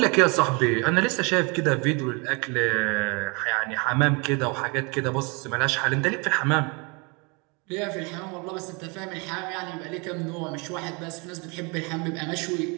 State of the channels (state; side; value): quieter; left; 30.7 dB